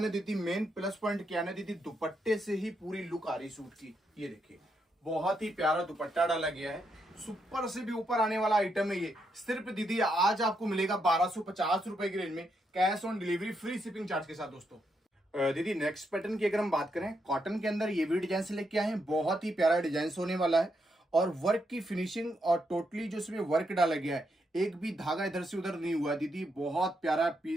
ना दीदी, मेन प्लस पॉइंट क्या है ना दीदी, दुपट्टे से ही पूरी लुक आ रही सूट की। ये देखिए बहुत ही प्यारा दुपट्टा डाला गया है, सुपर से भी ऊपर आने वाला आइटम है ये। सिर्फ दीदी आज आपको मिलेगा 1250 रुपए की रेंज में, cash on delivery, free shipping charge के साथ दोस्तों। दीदी नेक्स्ट पैटर्न की अगर हम बात करें, कॉटन के अंदर ये भी डिजाइन से लेके आए हैं, बहुत ही प्यारा डिजाइन होने वाला है और वर्क की फिनिशिंग और टोटली जो इसमें वर्क डाला गया है, एक भी धागा इधर से उधर नहीं हुआ दीदी, बहुत प्यारा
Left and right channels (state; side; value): normal; both; correlation 0.80